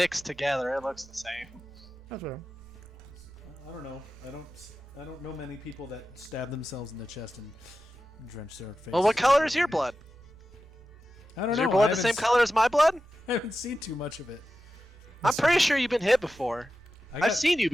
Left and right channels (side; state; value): both; normal; correlation 0.92